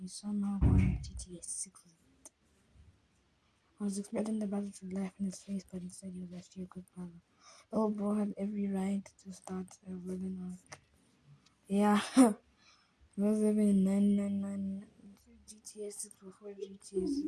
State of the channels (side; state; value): both; identical; correlation 1.00